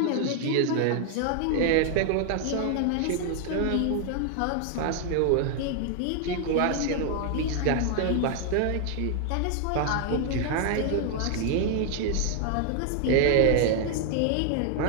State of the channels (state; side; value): different; both; correlation 0.00